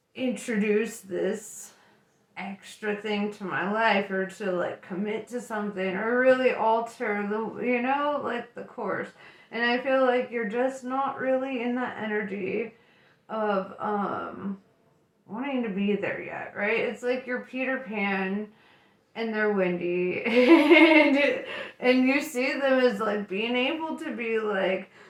introduce this extra thing to my life or to like commit to something or really alter the, you know, like the course? And I feel like you're just not really in that energy of wanting to be there yet, right? It's like you're Peter Pan and they're Wendy and you see them as like being able to be like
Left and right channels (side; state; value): both; identical; correlation 1.00